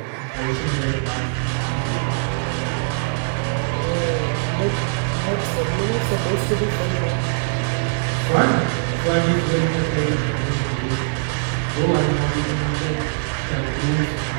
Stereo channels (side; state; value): left; silent; 60 dB below the other